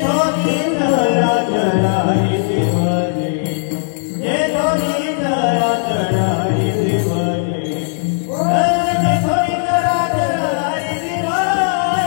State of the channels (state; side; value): silent; right; 68 dB below the other